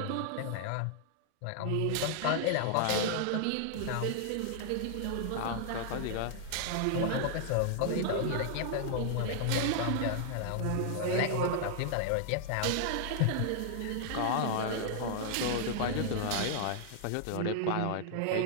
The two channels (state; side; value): different; both; correlation -0.01